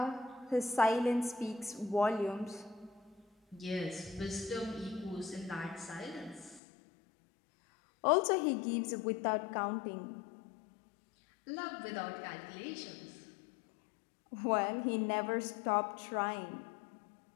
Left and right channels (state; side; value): drops out; right; at 6.6 s